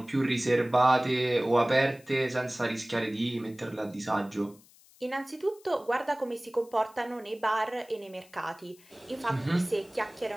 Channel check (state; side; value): noise; left; hiss, 27 dB below the sound